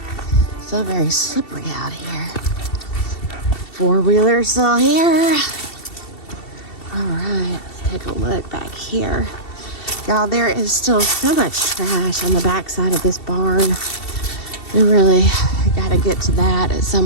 still very slippery out here. Four-wheeler still here. All right, let's take a look back here. Y'all, there is still so much trash on the back side of this barn. We really got to get to that at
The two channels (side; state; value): right; late; 2.7 ms